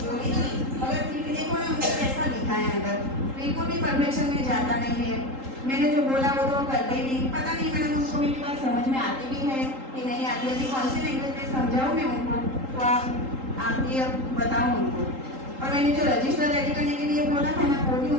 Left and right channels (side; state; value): left; late; 3.8 ms